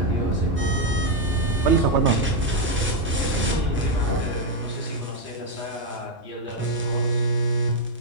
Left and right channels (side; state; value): both; normal; correlation 0.03